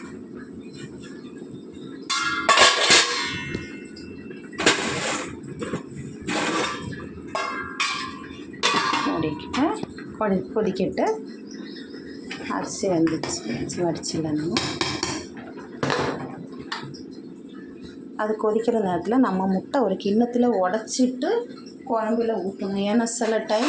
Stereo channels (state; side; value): identical; both; correlation 1.00